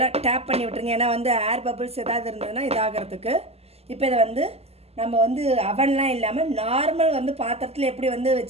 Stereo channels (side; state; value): left; late; 0.29 ms